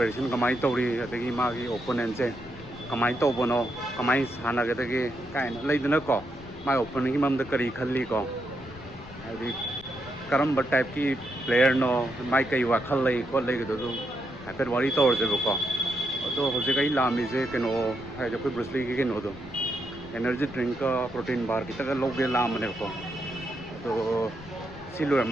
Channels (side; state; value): left; noise; rumble, 18 dB below the sound